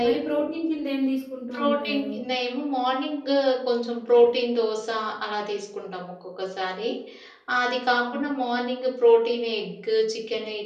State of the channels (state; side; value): identical; both; correlation 1.00